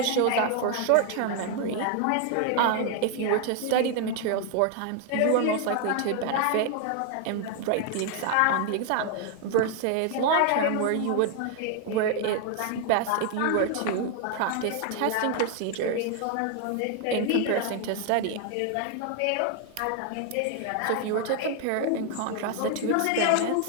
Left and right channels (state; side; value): different; both; correlation 0.00